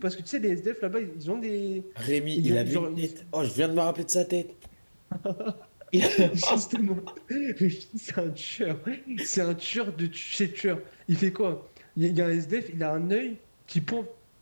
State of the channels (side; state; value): both; inverted; correlation -1.00